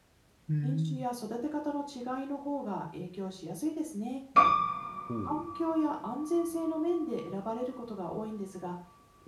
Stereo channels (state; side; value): identical; both; correlation 1.00